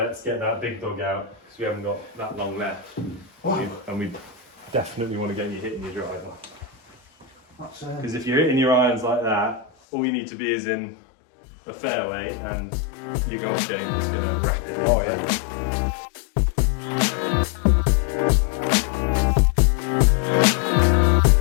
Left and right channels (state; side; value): drops out; right; at 9.7 s